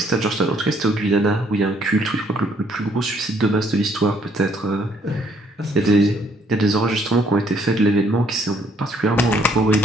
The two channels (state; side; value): normal; both; correlation 0.66